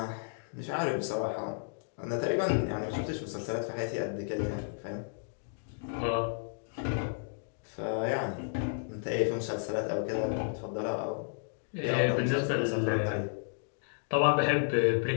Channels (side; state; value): right; silent; digital silence